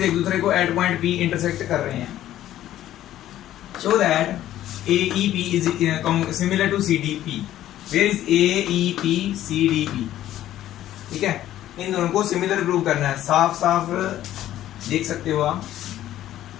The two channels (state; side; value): quieter; right; 13.0 dB